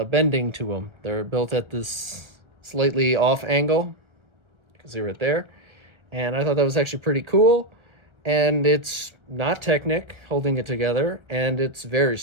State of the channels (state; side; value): late; left; 1.3 ms